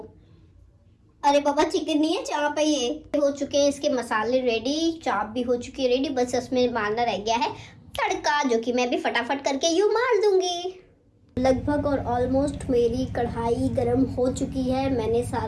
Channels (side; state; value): both; identical; correlation 1.00